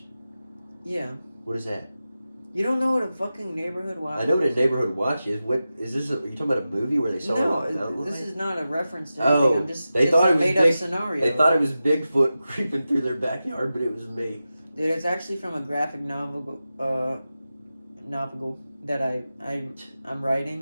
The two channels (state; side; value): inverted; both; correlation -0.93